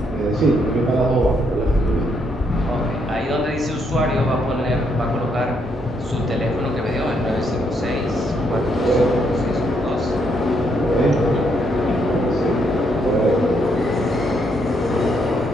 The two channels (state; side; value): normal; both; correlation 0.74